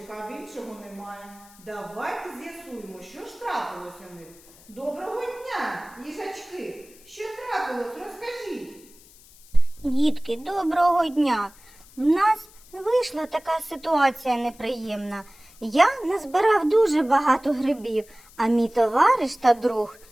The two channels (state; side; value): noise; left; hiss, 24 dB below the sound